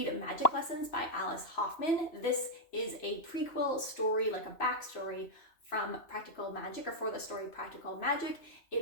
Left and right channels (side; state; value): right; late; 3.0 ms